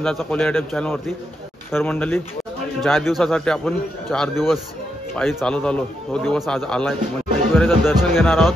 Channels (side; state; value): both; normal; correlation 0.82